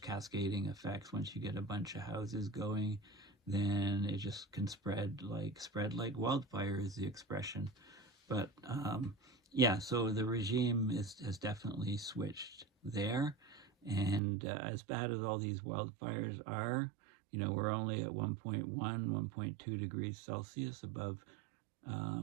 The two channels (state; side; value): drops out; left; at 14.2 s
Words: effects. Once you get a bunch of houses going, then it just can spread like wildfire is the expression. But yeah, so the regime has definitely switched there. And as bad as all these wildfires are, you know, we're only at 1.1, 1.2 degrees Celsius above